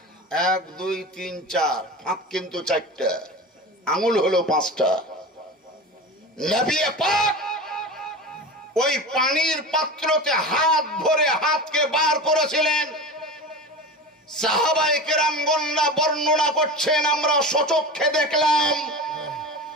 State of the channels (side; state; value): both; normal; correlation 0.30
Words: 1 2 3 4, ফাঁক কিন্তু 4টা, আঙুল হলো 5টা। নবী পাক ওই পানির পাত্রতে হাত ভরে হাতকে বার করেছিলেন। সাহাবায়ে কেরামগণরা বর্ণনা করছেন, আমরা সচক্ষে দেখলাম